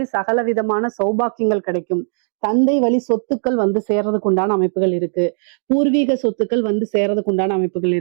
சகல விதமான சௌபாக்கியங்கள் கிடைக்கும். தந்தை வழி சொத்துக்கள் வந்து சேர்றதுக்கு உண்டான அமைப்புகள் இருக்கு. பூர்வீக சொத்துக்கள் வந்து சேர்றதுக்கு உண்டான அமைப்புகள்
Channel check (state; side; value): silent; left; digital silence